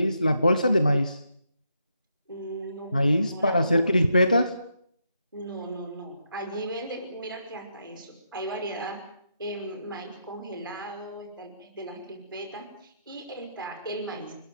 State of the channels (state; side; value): inverted; both; correlation -0.80